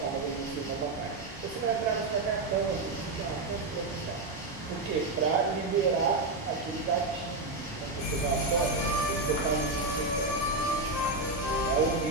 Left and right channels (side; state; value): left; quieter; 3.1 dB